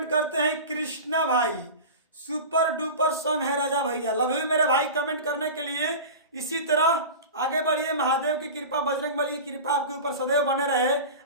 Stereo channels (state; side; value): inverted; both; correlation -0.30